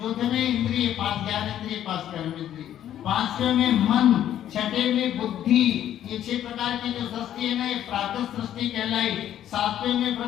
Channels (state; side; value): quieter; right; 11.2 dB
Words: चौथे में इंद्रिय 5 ज्ञान इंद्रिय, 5 कर्म इंद्रिय। 5वें में मन, 6ठे में बुद्धि। ये 6 प्रकार की जो सृष्टि है ना, ये प्राकृत सृष्टि कहलाई। 7वें में